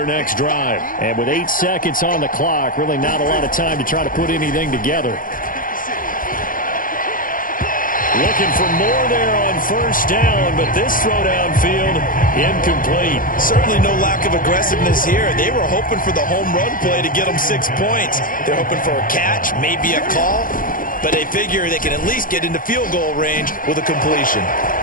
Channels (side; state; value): right; late; 0.40 ms